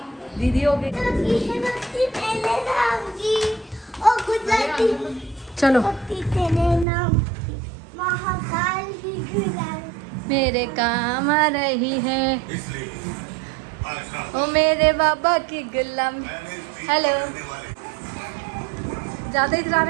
दीदी हो गई। पहले नाम जी और गुजराती चलो तेरे नाम महाकाल की गुलाम मेरे काम आ रही है, ओ मेरे बाबा की गुलाम। हेलो, ज़्यादा इतरा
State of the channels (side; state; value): left; drops out; at 6.9 s